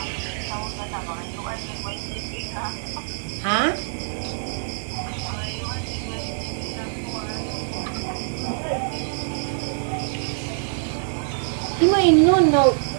Ha? Di mo inon na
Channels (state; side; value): silent; left; digital silence